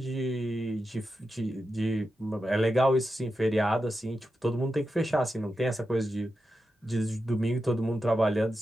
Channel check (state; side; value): normal; both; correlation 0.89